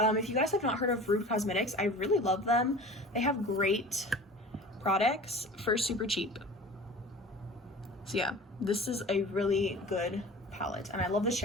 you guys have not heard of Rude Cosmetics, I really love them. They have great products for super cheap. So yeah, this is a really good palette, and I love the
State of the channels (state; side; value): normal; both; correlation 0.39